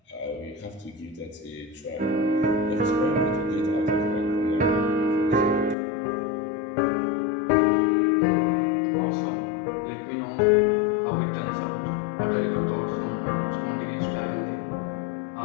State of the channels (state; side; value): drops out; right; at 5.8 s